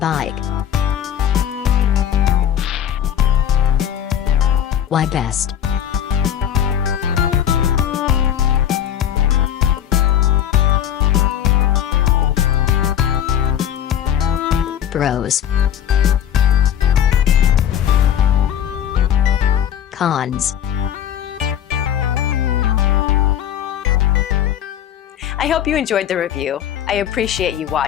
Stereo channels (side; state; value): right; quieter; 9.9 dB